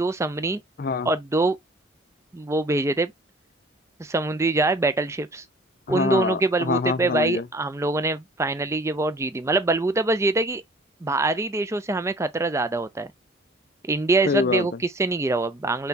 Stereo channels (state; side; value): normal; both; correlation 0.48